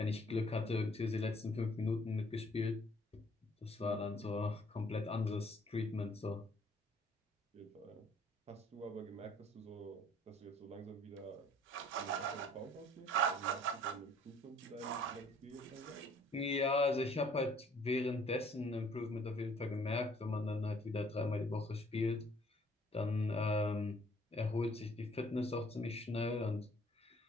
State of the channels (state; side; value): normal; both; correlation 0.59